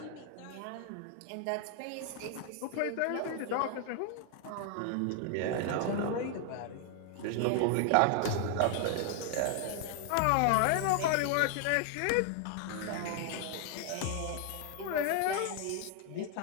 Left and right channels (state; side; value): different; both; correlation 0.00